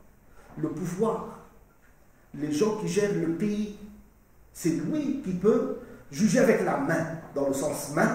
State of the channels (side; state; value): both; identical; correlation 1.00